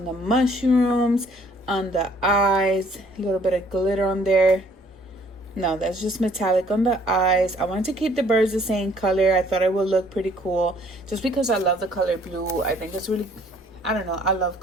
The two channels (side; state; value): both; normal; correlation 0.60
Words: the mushrooms, on the eyes, a little bit of glitter on there. No, that's just metallic on the eyes. I wanted to keep the birds the same color. I thought it would look pretty cool just because I love the color blue. I think it's really, I don't know, I